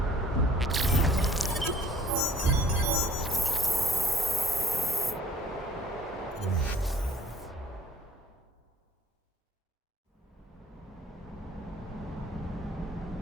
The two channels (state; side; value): normal; both; correlation 0.55